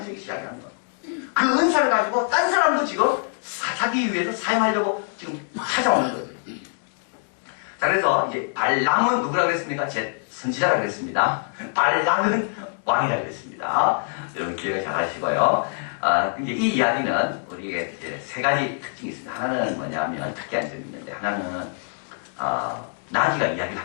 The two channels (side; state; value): right; silent; digital silence